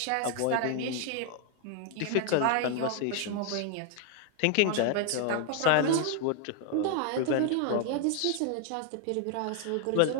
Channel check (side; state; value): both; different; correlation 0.00